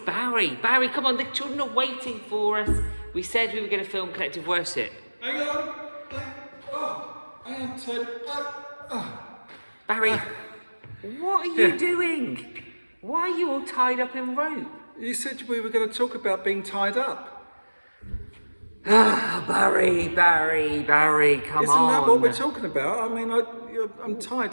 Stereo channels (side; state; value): both; inverted; correlation -1.00